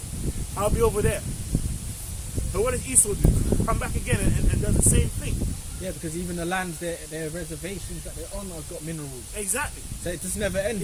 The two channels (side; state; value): both; identical; correlation 1.00